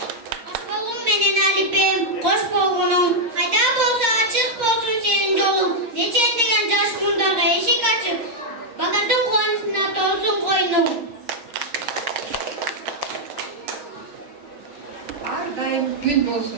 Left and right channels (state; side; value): late; left; 6.4 ms